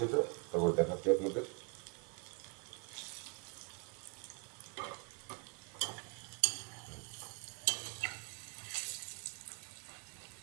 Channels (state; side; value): quieter; left; 31.4 dB